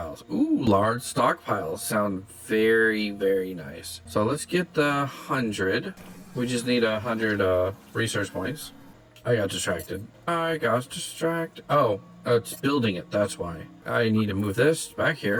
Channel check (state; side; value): identical; both; correlation 1.00